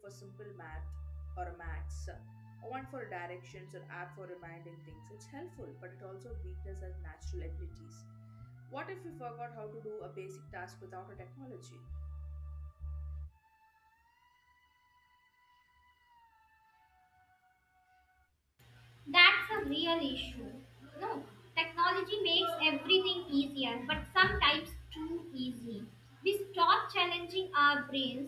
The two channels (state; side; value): identical; both; correlation 1.00